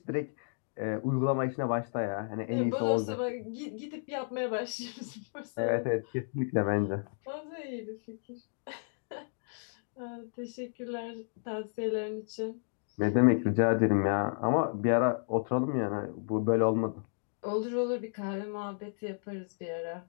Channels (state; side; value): silent; right; digital silence